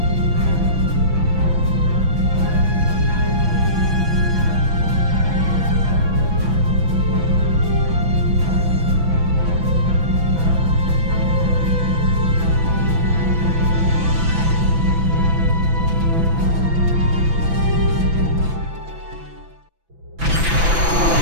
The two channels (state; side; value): late; left; 6.0 ms